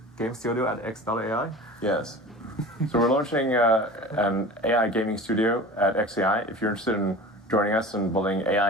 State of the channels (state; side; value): normal; both; correlation 0.36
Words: Game Studio at X.AI? Yes. So we're launching an AI gaming studio at XAI. If you're interested in joining us in building